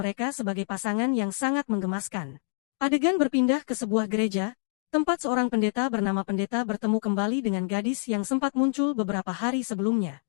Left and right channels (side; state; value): right; silent; digital silence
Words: sebagai pasangan yang sangat menggemaskan. Adegan berpindah ke sebuah gereja, tempat seorang pendeta bernama Pendeta bertemu kembali dengan gadis yang sempat muncul beberapa hari sebelumnya.